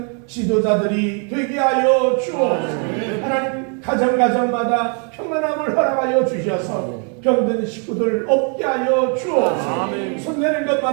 지도자들이 되게 하여 주옵소서. 하나님 가정마다 평안함을 허락하여 주셔서 병든 식구들 없게 하여 주옵소서. 손대는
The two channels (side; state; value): left; quieter; 39.5 dB